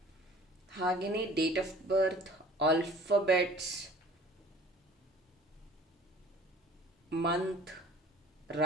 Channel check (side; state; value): both; normal; correlation 0.48